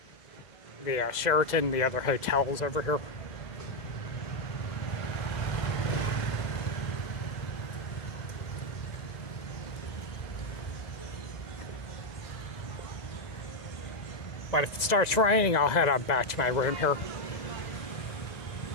the Sheraton, the other hotels over here. But if it starts raining, I'll head on back to my room here.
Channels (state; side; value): late; right; 2.0 ms